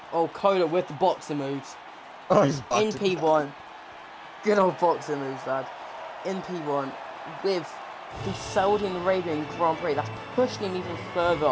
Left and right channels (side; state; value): both; identical; correlation 1.00